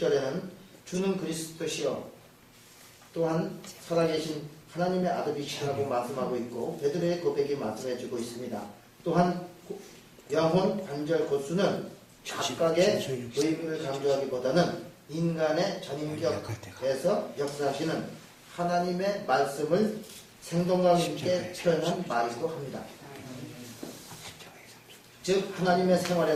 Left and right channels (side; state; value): both; identical; correlation 1.00